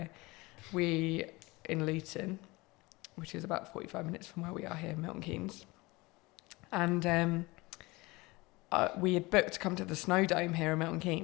we, in Luton, which is about 45 minutes from where we are here in Milton Keynes, and we had booked to come to the Snow Dome here in Milton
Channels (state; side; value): quieter; right; 22.9 dB